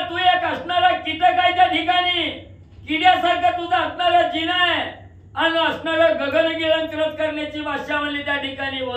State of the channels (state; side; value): identical; both; correlation 1.00